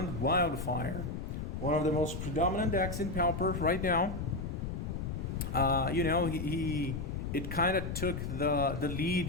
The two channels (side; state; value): left; noise; rumble, 5 dB below the sound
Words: Wildfire, one of the most predominant decks in Pauper right now. It kind of took the